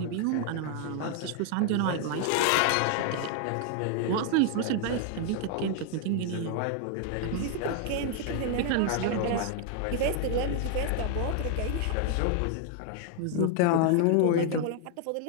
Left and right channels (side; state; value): both; different; correlation 0.00